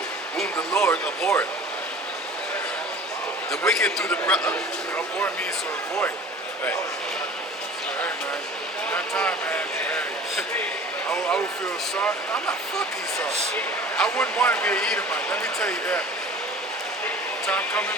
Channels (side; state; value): both; normal; correlation 0.43